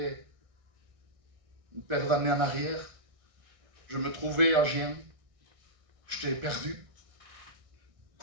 une paire d'années en arrière, je me trouvais à Gien, j'étais perdu, je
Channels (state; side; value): late; left; 1.6 ms